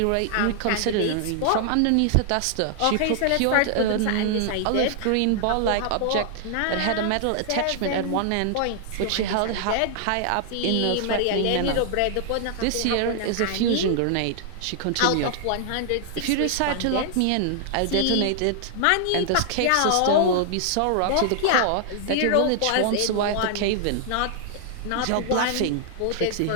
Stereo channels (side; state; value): both; different; correlation -0.01